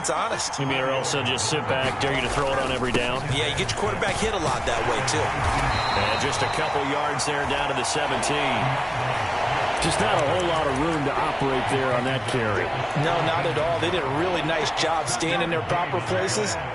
honest. You mean or else they'll just sit back, dare you to throw it on every down? Yeah, you get your quarterback hit a lot that way, too. And just a couple yards there down to the 17. Just not a whole lot of room to operate there on that carry. No, not at all. They did a really nice job staying in their proper places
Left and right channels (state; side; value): identical; both; correlation 1.00